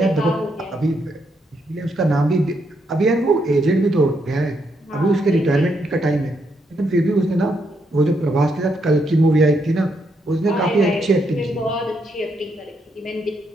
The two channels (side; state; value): both; normal; correlation 0.77